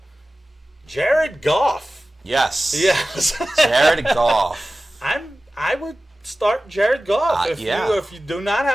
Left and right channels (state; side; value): normal; both; correlation 0.96